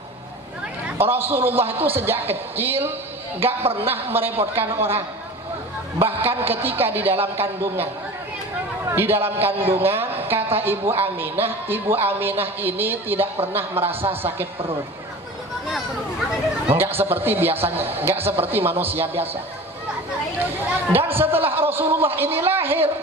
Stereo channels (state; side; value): normal; both; correlation 0.37